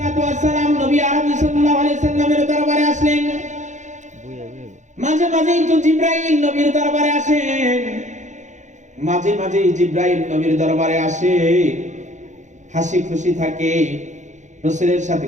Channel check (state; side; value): late; left; 0.35 ms